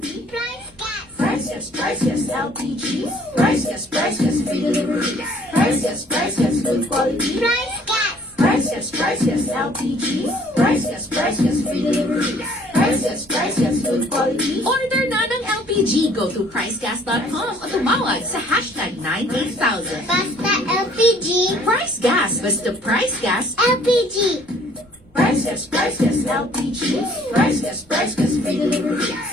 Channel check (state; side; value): noise; right; rumble, 30 dB below the sound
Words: Price yes, LPG. Price yes, free delivery. Price yes, good quality. Price yes, LPG. Price yes, free delivery. Price yes, good quality. Order na ng LPG. Go to pricegas.com o tumawag sa hashtag 98000. Basta LPG. Price Gas. Basta Price Gas. LPG. Price yes, LPG. Price yes, free delivery.